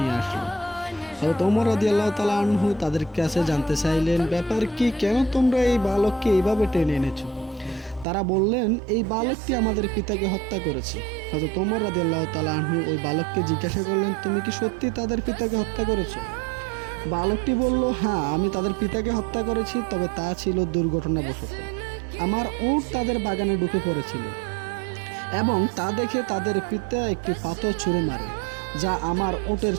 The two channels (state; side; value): drops out; left; at 8.1 s